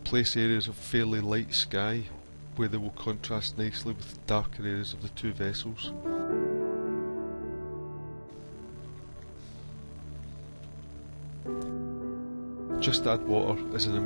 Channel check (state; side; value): inverted; both; correlation -1.00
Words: place areas of fairly light sky where they will contrast nicely with the darker areas of the two vessels. Just Add Water is an